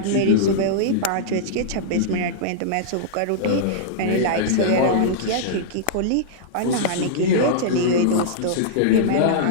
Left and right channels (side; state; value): both; different; correlation -0.02